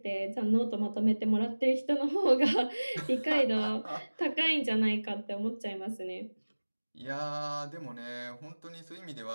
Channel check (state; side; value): inverted; both; correlation -1.00